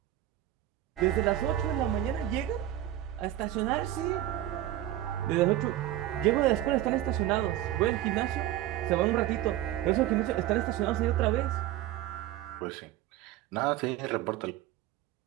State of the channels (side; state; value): left; quieter; 13.5 dB